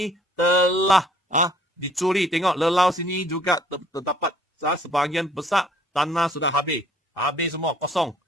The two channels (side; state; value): both; normal; correlation 0.58